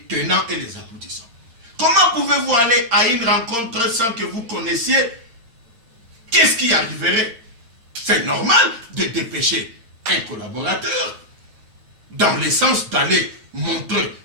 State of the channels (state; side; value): late; left; 8.7 ms